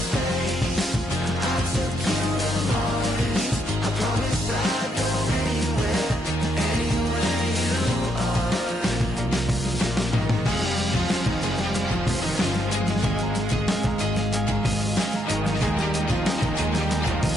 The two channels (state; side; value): normal; both; correlation 0.77